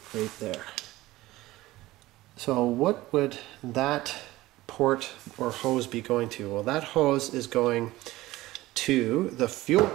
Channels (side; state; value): left; quieter; 17.7 dB